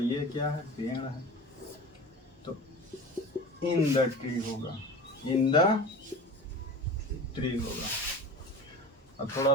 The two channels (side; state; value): both; normal; correlation 0.34